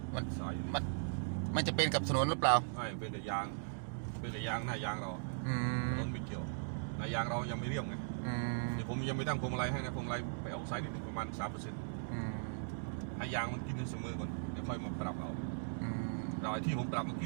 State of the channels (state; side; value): silent; left; digital silence